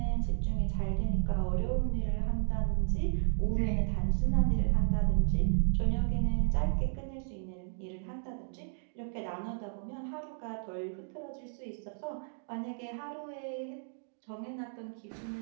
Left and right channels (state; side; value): silent; left; digital silence